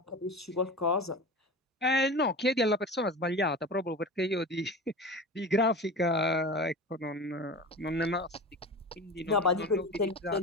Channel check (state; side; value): normal; both; correlation 0.31